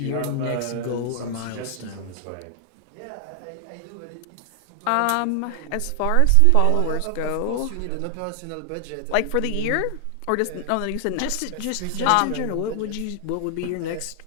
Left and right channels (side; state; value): both; different; correlation 0.00